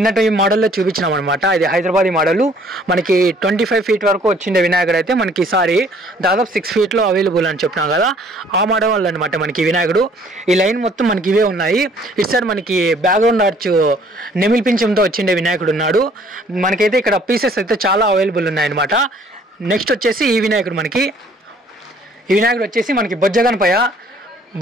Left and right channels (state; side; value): normal; both; correlation 0.58